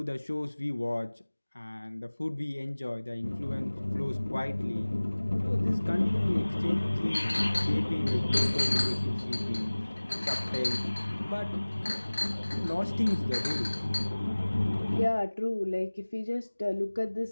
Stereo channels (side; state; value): both; inverted; correlation -1.00